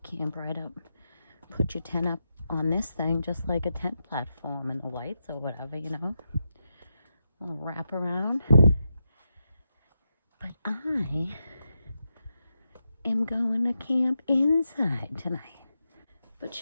camp right up, put your tent up on this thing, just like a tent platform, and the lights or whatever, you know. A little wraparound. But I am going to camp inside tonight. But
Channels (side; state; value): both; inverted; correlation -0.88